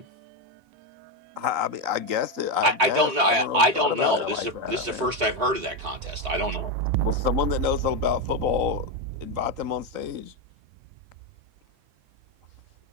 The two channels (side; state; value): left; late; 3.8 ms